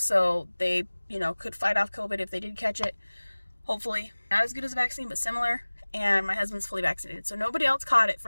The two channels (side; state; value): both; inverted; correlation -1.00